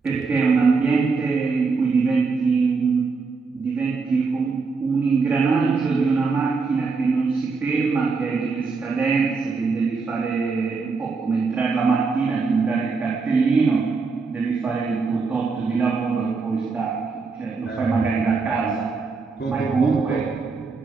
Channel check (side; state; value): left; quieter; 4.6 dB